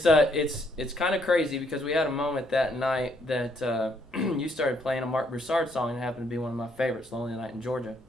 kind of crazy because we had a moment that night that you started playing a Mark Broussard song, and it happened to be one of my favorites, Lonely Night in Georgia.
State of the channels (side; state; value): both; normal; correlation 0.70